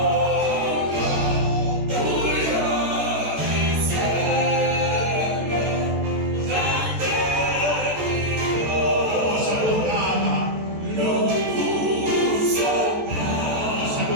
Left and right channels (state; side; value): late; left; 14 ms